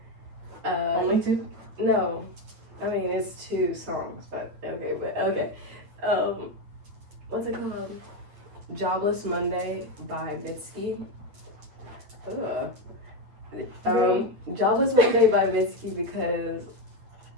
Only 2? No, I mean it's 2 songs, but okay. What's it called? "Jobless Monday" by Mitski. Ugh. "Jobless Monday" by Mitski because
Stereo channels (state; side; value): late; left; 9.2 ms